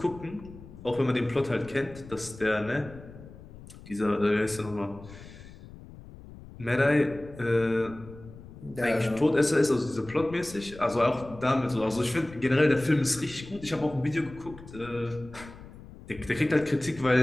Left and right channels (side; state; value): left; noise; rumble, 17 dB below the sound